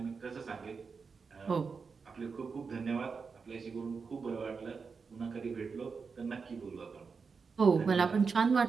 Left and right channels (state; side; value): quieter; left; 5.2 dB